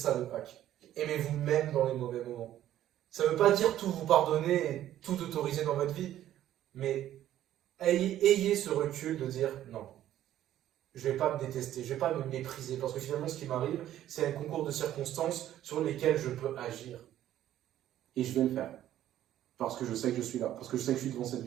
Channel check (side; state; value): left; quieter; 12.4 dB